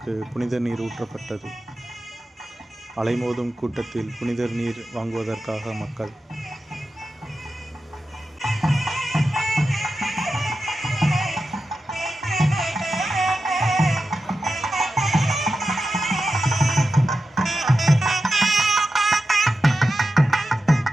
புனித நீர் ஊற்றப்பட்டது. அலைமோதும் கூட்டத்தில் புனித நீர் வாங்குவதற்காக மக்கள்.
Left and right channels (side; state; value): both; normal; correlation 0.91